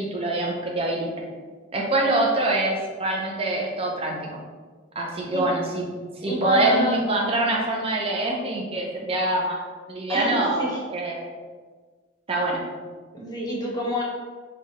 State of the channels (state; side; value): normal; both; correlation 0.08